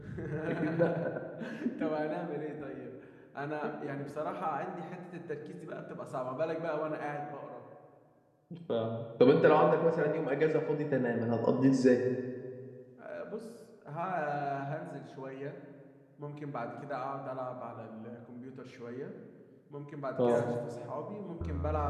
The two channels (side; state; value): both; identical; correlation 1.00